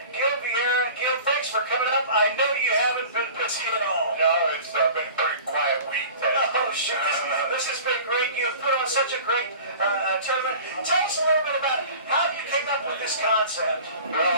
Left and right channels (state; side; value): inverted; both; correlation -0.41